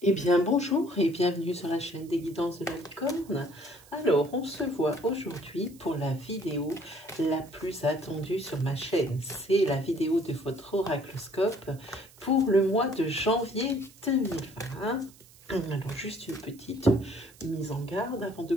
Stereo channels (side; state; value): right; noise; hiss, 24 dB below the sound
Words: Eh bien, bonjour et bienvenue sur la chaîne des guidances de la licorne. Alors, on se voit aujourd'hui pour la vidéo la plus attendue sur ma chaîne. C'est la vidéo de votre oracloscope pour le mois de janvier 2020. Alors, juste une petite mise en garde avant de